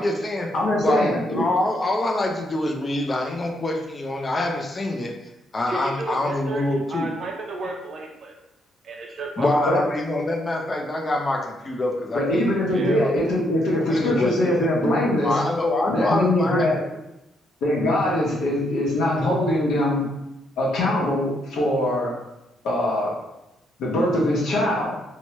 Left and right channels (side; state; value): both; normal; correlation 0.74